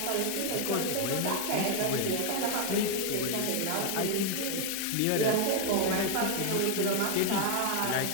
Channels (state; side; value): different; both; correlation 0.00